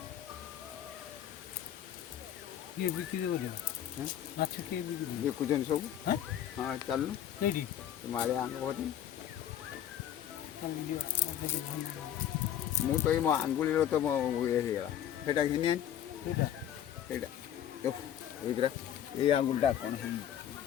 किए बिक्री बोलियो माछ किए बिक्री देखुछन सब हैं हाँ चलनु नहीं तुम्हारे आंग बहुत ମୁଁ ତ ଏଇ ମୋ ଆଙ୍ଗୁଳିର ତ ମୋ ଇଏ ହେଇଗଲା ସେଇଟା ଘିନି ଆଣି ସେଇଟା ଏଇଟା ଏଇ ଆଙ୍ଗୁଳିଟା କ'ଣ ହେଇଛି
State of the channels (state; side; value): quieter; right; 10.5 dB